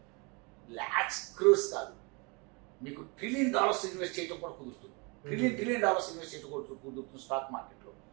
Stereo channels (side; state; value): left; quieter; 30.2 dB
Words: లాక్స్ క్రోర్స్ కాదు, మీకు $1 ట్రిలియన్ ఇన్వెస్ట్ చేయడం కూడా కుదురుతుంది. $1 ట్రిలియన్ ఇన్వెస్ట్ చేయడం కూడా కుదురుతుంది స్టాక్ మార్కెట్లో.